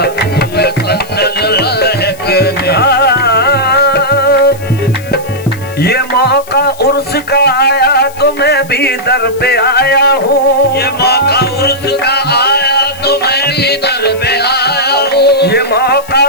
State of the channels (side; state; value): left; noise; hiss, 21 dB below the sound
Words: पूरे संदल महकने। ये मौका उर्स का आया तो मैं भी दर पे आया हूँ, ये मौका उर्स का आया तो मैं भी दर पे आया हूँ, ये मौका